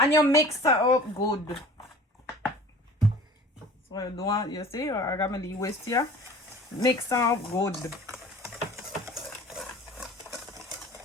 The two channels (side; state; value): both; normal; correlation 0.44